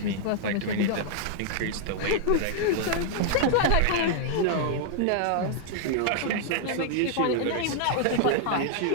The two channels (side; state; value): both; different; correlation -0.01